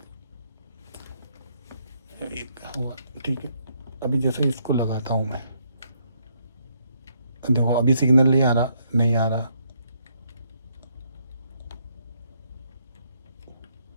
एक हुआ, ठीक है। अभी जैसे इसको लगाता हूँ मैं, देखो अभी सिग्नल नहीं आ रहा, नहीं आ रहा,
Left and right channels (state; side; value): inverted; both; correlation -0.73